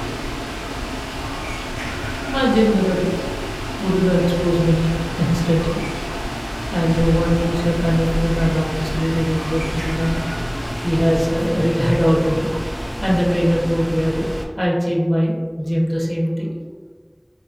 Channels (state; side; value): identical; both; correlation 1.00